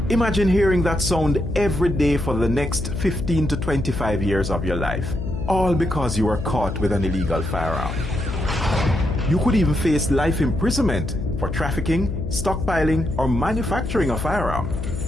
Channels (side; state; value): left; noise; hum, 5 dB below the sound